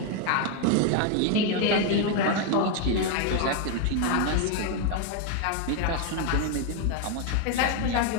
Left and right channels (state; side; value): different; both; correlation 0.01